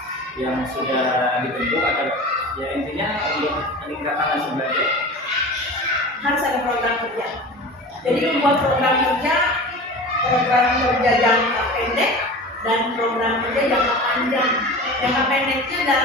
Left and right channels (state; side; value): normal; both; correlation 0.35